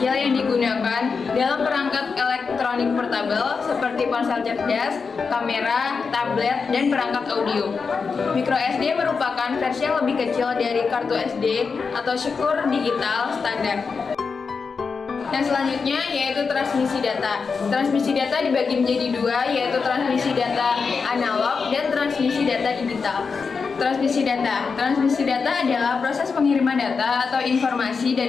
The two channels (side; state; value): right; quieter; 5.1 dB